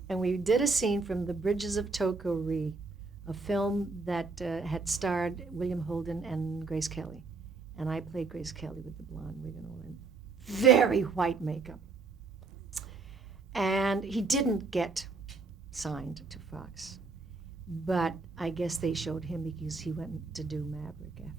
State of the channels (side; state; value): left; quieter; 4.1 dB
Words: And we did a scene from The Bridges of Toko-Ri, a film that had starred William Holden and Grace Kelly. And I played Grace Kelly with the blonde wig and all, and very white makeup. And he didn't get signed to Fox. But I guess they showed him because he went to do Maverick